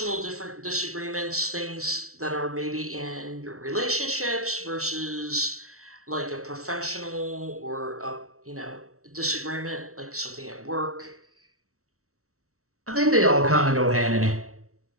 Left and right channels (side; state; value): left; late; 0.64 ms